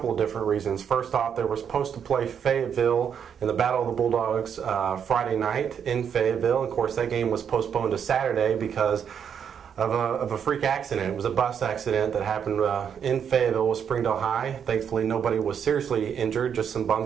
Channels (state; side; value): quieter; left; 7.8 dB